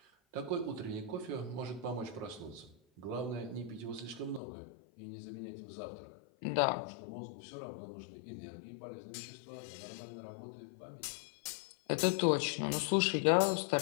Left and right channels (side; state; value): right; drops out; at 4.4 s